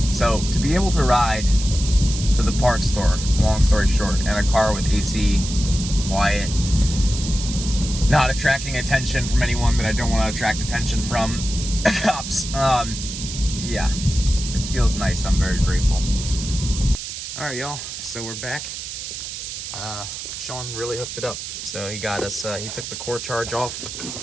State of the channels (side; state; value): right; noise; hiss, 8 dB below the sound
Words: So to be able to ride to the parts store, long story short, and a car with AC, quiet, not attracting attention from anyone that I don't want to attract attention from, cops, yeah, it feels nice. I'm very grateful. All right, y'all, so we're back. Sean really hooked it up. So he got us, he took the core charge off.